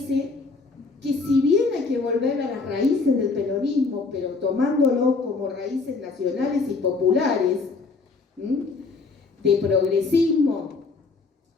que si bien hay que volver a las raíces del peronismo, pero tomándolo como raíces nacionales y populares, de progresismo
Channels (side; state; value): right; quieter; 4.2 dB